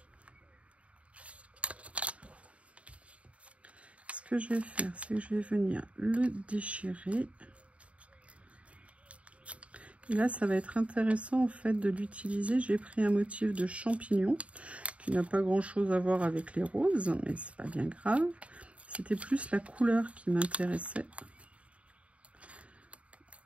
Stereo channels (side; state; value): left; late; 0.064 ms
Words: Ce que je vais faire, c'est que je vais venir le déchirer. Et là, ça va être intéressant en fait de l'utiliser. J'ai pris un motif de champignon qui n'a pas grand chose à voir avec les roses, mais c'est pas bien grave. C'était plus la couleur qui m'intéressait.